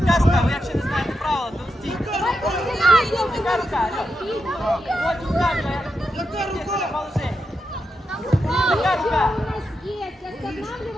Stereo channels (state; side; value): normal; both; correlation 0.86